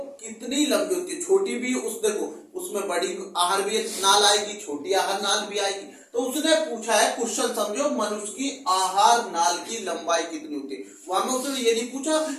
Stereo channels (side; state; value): both; identical; correlation 1.00